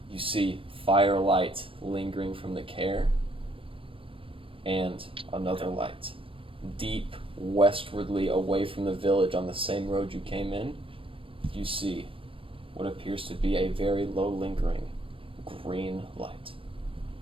you see firelight lingering from the care and another light. Deep westwardly away from the village on the same road you came in, you see what appears to be a very low lingering green light.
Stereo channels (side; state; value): left; late; 0.26 ms